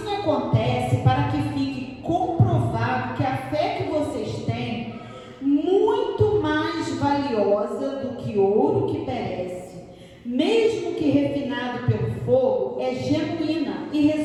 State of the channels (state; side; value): identical; both; correlation 1.00